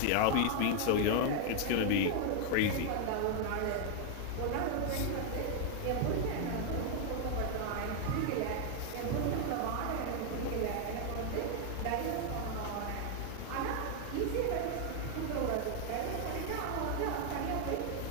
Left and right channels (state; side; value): different; both; correlation 0.00